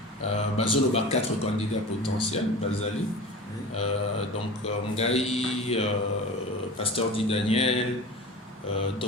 bazolo ba 4 candidats potentiels bazali. Donc Ngai, Pasteur Di Daniel,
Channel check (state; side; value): normal; both; correlation 0.34